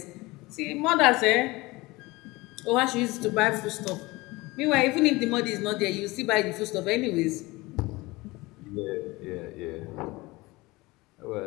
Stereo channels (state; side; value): quieter; right; 21.8 dB